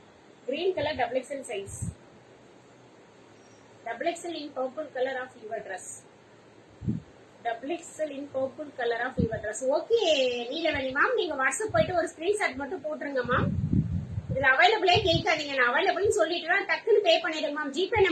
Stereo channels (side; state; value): both; identical; correlation 1.00